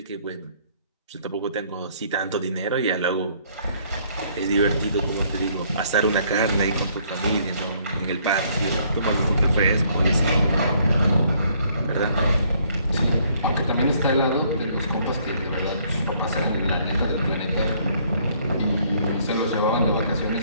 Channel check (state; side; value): inverted; both; correlation -0.65